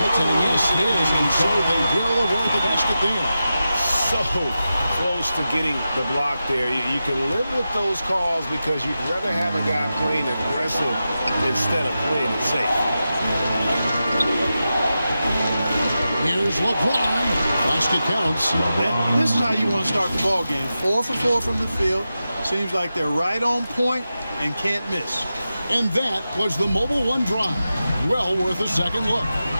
Yes, it is. And so they will avoid the basket there. So close to getting the block there. You can live with those calls because you'd rather have a guy playing aggressive instead of playing it safe. Here's LeBron. Basket counts. And this is how you want to start the ball game. 4 for 4 from the field. Seems like they're right on point and can't miss. And that was the Mobile One drive. Well worth a second look.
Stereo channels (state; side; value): inverted; both; correlation -0.91